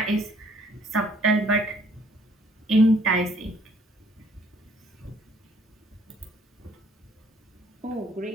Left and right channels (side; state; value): both; normal; correlation 0.61